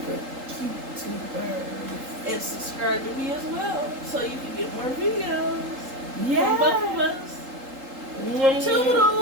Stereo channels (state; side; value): late; left; 3.8 ms